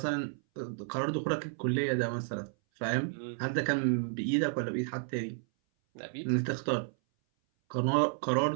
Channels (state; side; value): silent; left; 57 dB below the other